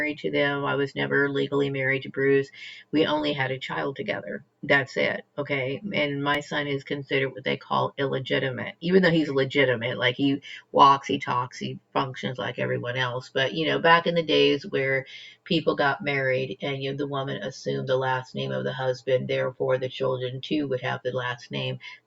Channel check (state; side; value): identical; both; correlation 1.00